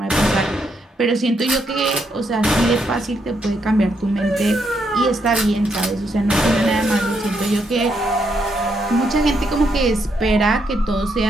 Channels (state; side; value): normal; both; correlation 0.77